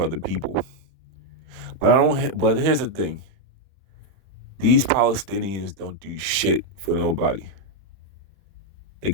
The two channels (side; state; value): left; late; 31 ms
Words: people. But I don't. But here's the thing: these Palestinians don't do shit for nobody. They